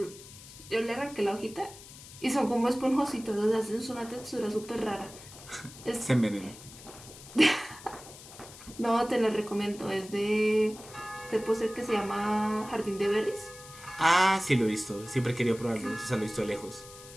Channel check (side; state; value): left; noise; hiss, 17 dB below the sound